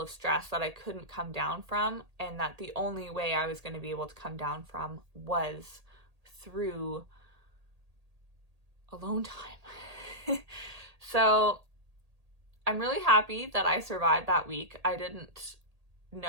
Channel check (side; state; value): left; late; 1.8 ms